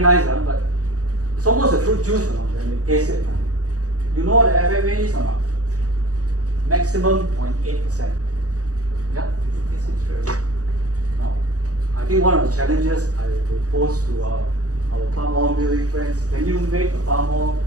nice, but it's almost a fruit juice when you taste it. You know what the FFA is or not? Maximum 0.8%. Yeah, you taste it straight away. Now, I think one of the challenges I will pose to our palm oil milling friends, can you make a palm oil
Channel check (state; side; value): late; left; 0.67 ms